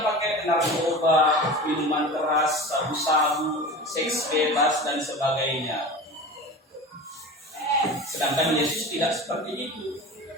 pakai narkoba, minuman keras, sabu-sabu, seks bebas dan sebagainya. Sedangkan Yesus tidak seperti itu.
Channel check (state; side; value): normal; both; correlation 0.32